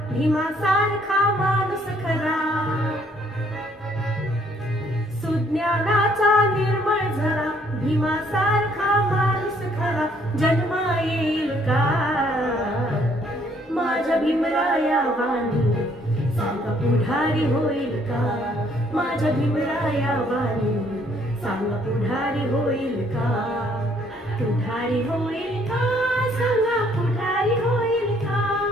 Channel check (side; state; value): both; normal; correlation 0.65